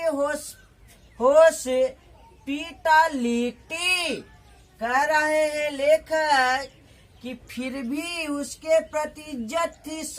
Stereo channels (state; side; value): identical; both; correlation 1.00